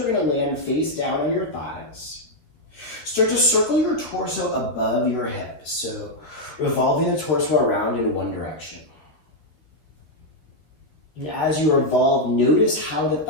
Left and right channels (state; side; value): late; right; 13 ms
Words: going to land face down on your thighs. Start to circle your torso above your hips. So revolving the torso around in one direction. And as you revolve, notice how the